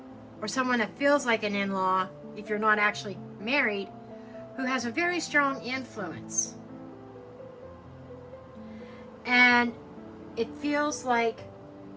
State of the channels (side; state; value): both; identical; correlation 1.00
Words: or someone that feels like an in-law, if you're not actually married, who has a very strong influence. And it feels like